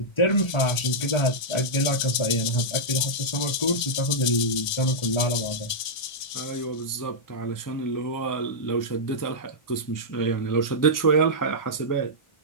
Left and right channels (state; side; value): late; right; 1.7 ms